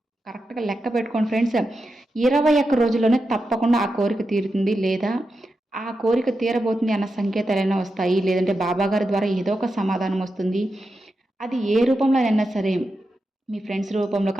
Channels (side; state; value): both; normal; correlation 0.89